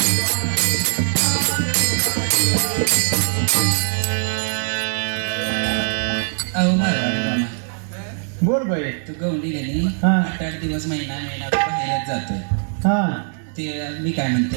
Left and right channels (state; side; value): silent; left; 63 dB below the other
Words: अहो मारवाडी मामा, बोल बाई. तू गवंडी गेली. हा. 8-8 दिवस महिना बाहेरच जातोय. हा ते मी काय म्हणते,